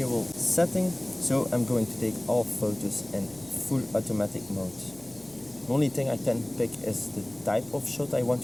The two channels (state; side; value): noise; left; hum, 24 dB below the sound